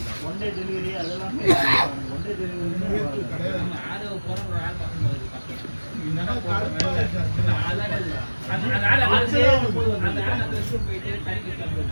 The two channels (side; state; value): both; inverted; correlation -1.00